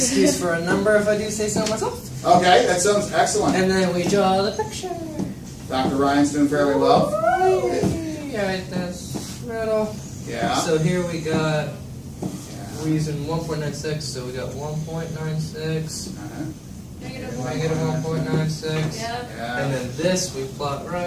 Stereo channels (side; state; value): both; identical; correlation 1.00